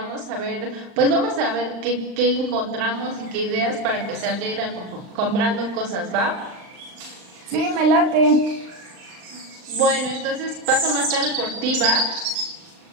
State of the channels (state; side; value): late; left; 39 ms